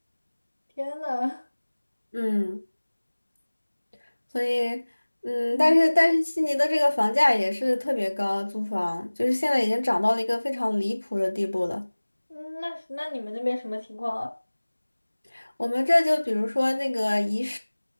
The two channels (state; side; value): inverted; both; correlation -1.00